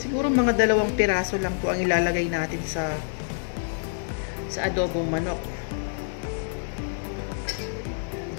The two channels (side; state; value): right; silent; 60 dB below the other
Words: mga 2 piraso lang po ang ilalagay natin sa adobong manok.